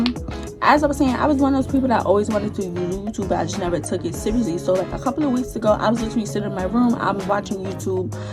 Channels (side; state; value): both; identical; correlation 1.00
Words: As I was saying, I was one of those people that always wanted to do YouTube, but I just never took it seriously. So like a couple of weeks ago, I was literally sitting in my room, I'm watching YouTube,